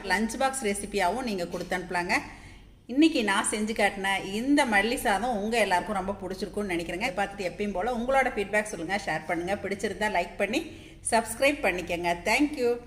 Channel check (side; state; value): both; identical; correlation 1.00